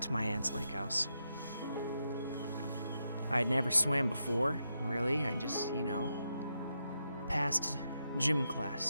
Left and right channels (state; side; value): inverted; both; correlation -0.84